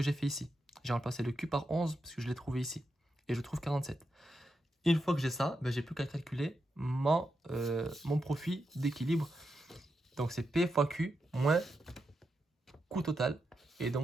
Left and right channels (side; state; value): both; normal; correlation 0.86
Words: j'ai fait ici. J'ai remplacé le Q par 11 parce que je l'ai trouvé ici. Et je trouve 47. Une fois que j'ai ça, j'ai plus qu'à calculer mon profit d'équilibre. Donc, c'est P fois Q moins coût total. Et